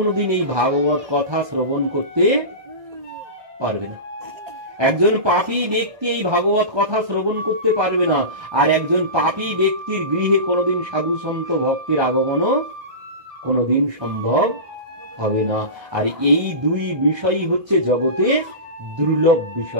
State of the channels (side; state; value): left; late; 1.7 ms